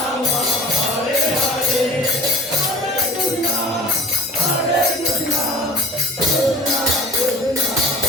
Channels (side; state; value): both; normal; correlation 0.42